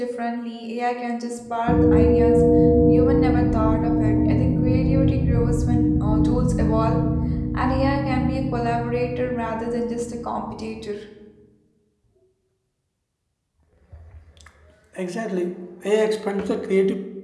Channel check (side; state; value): both; identical; correlation 1.00